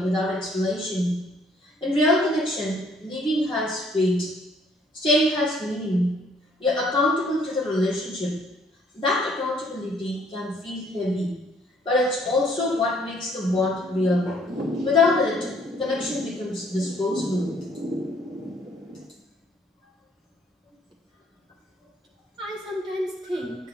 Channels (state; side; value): normal; both; correlation 0.63